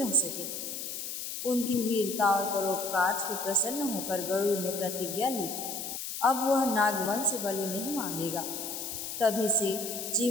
सके। उनकी वीरता और परोपकार से प्रसन्न होकर गरुड़ ने प्रतिज्ञा ली, अब वह नागवंश से बलि नहीं मांगेगा। तभी से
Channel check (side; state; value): left; noise; hiss, 6 dB below the sound